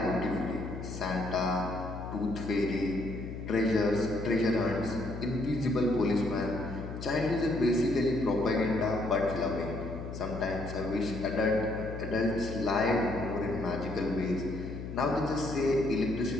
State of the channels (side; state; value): left; noise; hum, 8 dB below the sound